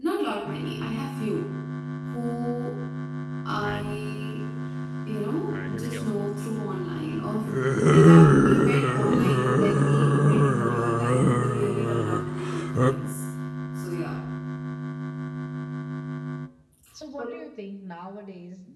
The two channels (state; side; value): identical; both; correlation 1.00